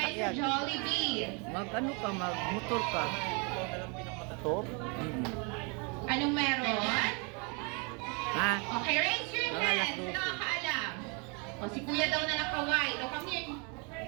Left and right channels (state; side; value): quieter; left; 33.4 dB